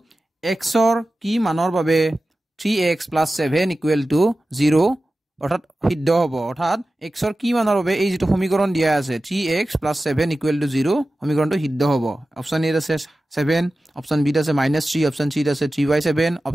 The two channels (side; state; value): both; normal; correlation 0.95